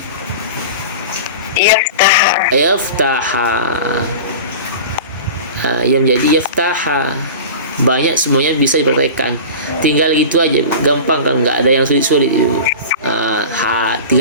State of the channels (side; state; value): both; inverted; correlation -0.33